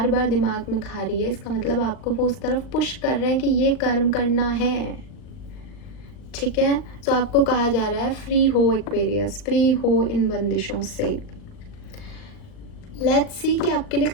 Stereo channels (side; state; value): right; late; 39 ms